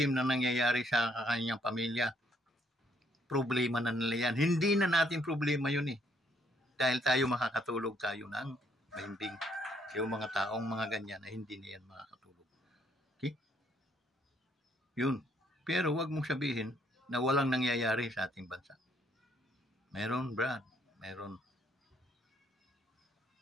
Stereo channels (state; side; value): normal; both; correlation 0.69